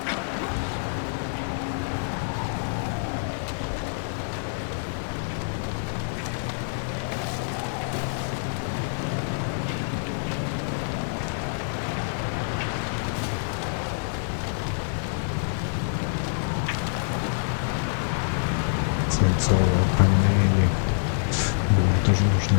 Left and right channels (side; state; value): right; silent; 61 dB below the other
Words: Свинцовые панели. Блин, тоже